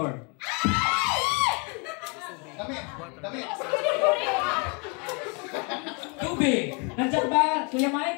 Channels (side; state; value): right; quieter; 31.8 dB